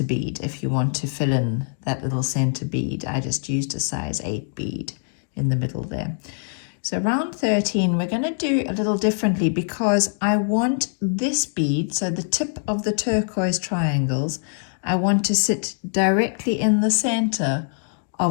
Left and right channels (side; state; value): right; silent; 63 dB below the other